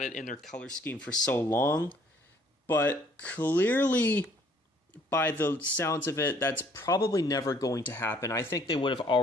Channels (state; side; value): normal; both; correlation 0.61